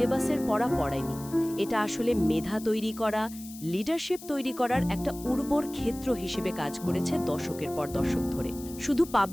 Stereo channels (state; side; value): noise; left; hiss, 16 dB below the sound